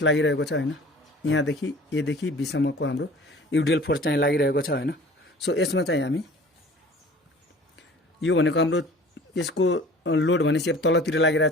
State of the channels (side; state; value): both; normal; correlation 0.46